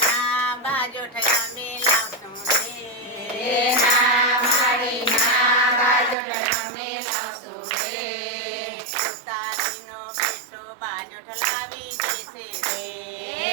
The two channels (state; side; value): drops out; left; at 6.2 s